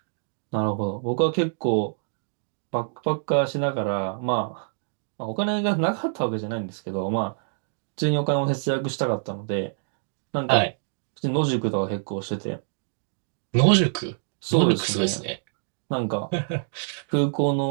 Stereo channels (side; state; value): left; silent; digital silence